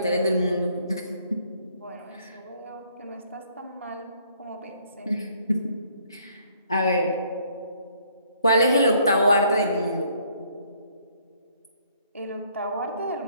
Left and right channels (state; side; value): inverted; both; correlation -0.64